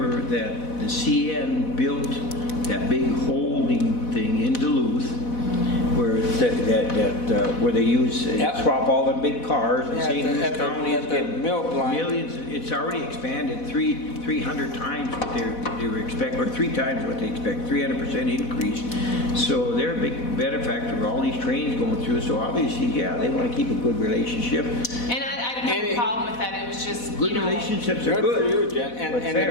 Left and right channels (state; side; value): late; right; 4.1 ms